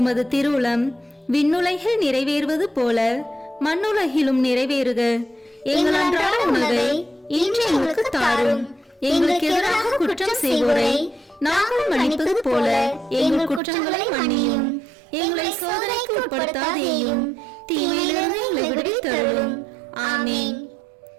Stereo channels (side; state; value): left; drops out; at 13.6 s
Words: திருவுளம் விண்ணுலகில் நிறைவேறுவது போல மண்ணுலகிலும் நிறைவேறுக. எங்கள் அன்றாட உணவை இன்று எங்களுக்கு தாரும். எங்களுக்கு எதிராக குற்றம் செய்வோரை நாங்கள் மன்னிப்பது போல எங்கள் குற்றங்களை மன்னியும். எங்களை சோதனைக்கு உட்படுத்தாதேயும், தீமையிலிருந்து எங்களை விடுவித்தருளும். ஆமீன்.